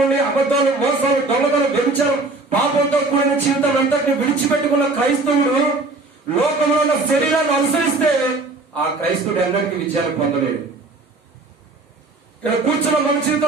అబద్ధాలు, మోసాలు, దొంగతనం, వ్యభిచారం, పాపంతో కూడిన జీవితం అంతటిని విడిచిపెట్టుకున్న క్రైస్తవుడు లోకంలో ఉన్న శరీరాన్ని అనుసరిస్తే ఆ క్రైస్తవుడు ఎన్నటికీ విజయాన్ని పొందలేడు. ఇక్కడ కూర్చున్న మన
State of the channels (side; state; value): left; quieter; 3.4 dB